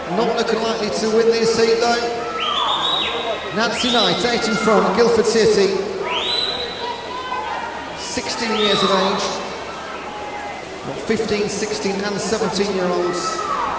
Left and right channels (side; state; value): both; identical; correlation 1.00